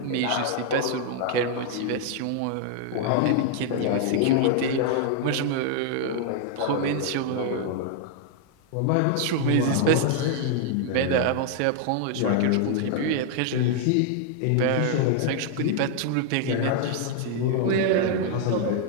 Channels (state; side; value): different; both; correlation -0.01